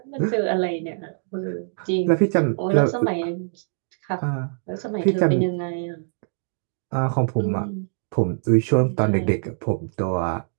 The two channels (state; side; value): silent; left; digital silence